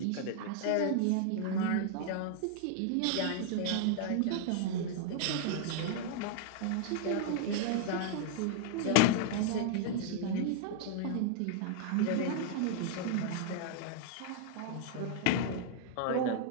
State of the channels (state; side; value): different; both; correlation -0.01